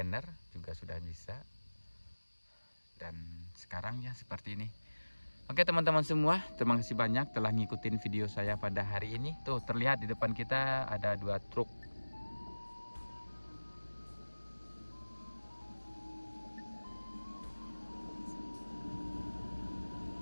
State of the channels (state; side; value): inverted; both; correlation -1.00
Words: juga sudah bisa. Dan sekarang ya seperti ini. Oke teman-teman semua, terima kasih banyak telah ngikutin video saya pada hari ini. Tuh terlihat di depan kita ada 2 truk.